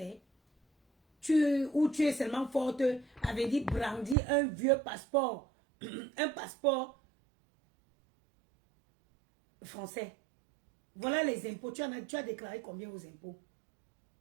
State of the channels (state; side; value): drops out; left; at 4.2 s